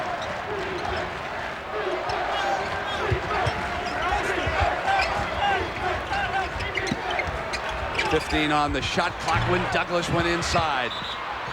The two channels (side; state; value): both; identical; correlation 1.00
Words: .15 on the shot clock when Douglas went inside.